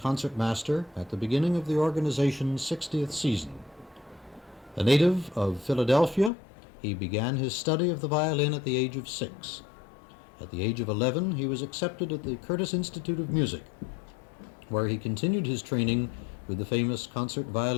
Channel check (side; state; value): right; drops out; at 6.3 s